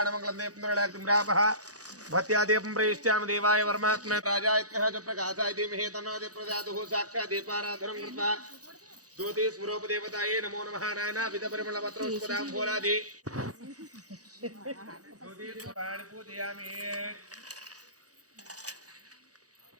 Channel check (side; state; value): left; late; 0.67 ms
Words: దేపంద్రలాగ్రాప భత్యాదీపం ప్రయిష్టామి దేవాయ వర్మాత్మ రాజాయ ప్రకాశాయ ధీమహి తన్నో ప్రజాతు సాక్షాత్ దీపారాధనం కృత్వా జ్యోతి స్వరూపదేవతాయే నమో నమః నానా విధ పరిమళ పత్రోష్పదాం ఫోలాది జ్యోతి పురాణ పూజయామి